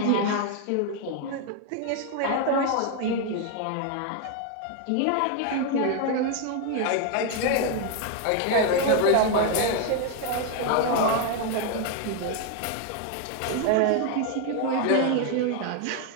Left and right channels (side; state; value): both; different; correlation 0.01